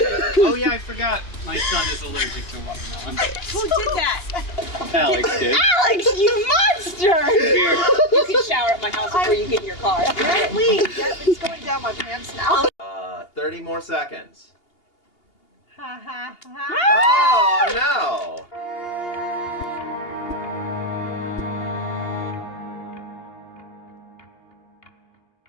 Oh yeah, I forgot. My son is allergic to watermelon. Who did that? Alex did. Alex, you monster! Here. You can shower at my house before you get in your car. Apparently, it's going down my pants now. 30 more seconds. Ha ha ha. Oh, no.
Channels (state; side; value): late; right; 2.8 ms